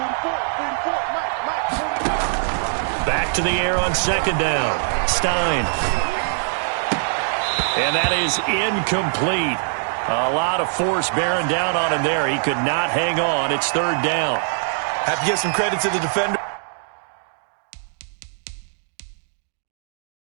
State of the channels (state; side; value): silent; left; digital silence